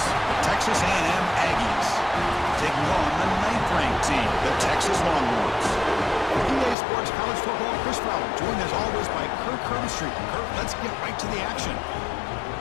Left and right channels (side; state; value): right; drops out; at 6.8 s